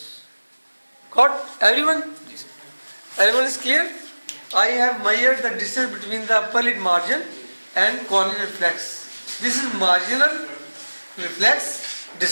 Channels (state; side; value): inverted; both; correlation -1.00